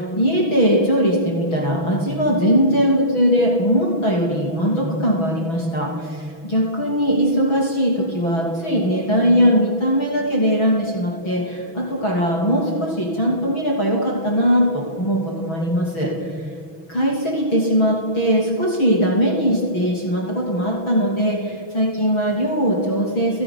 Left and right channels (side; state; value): right; late; 6.1 ms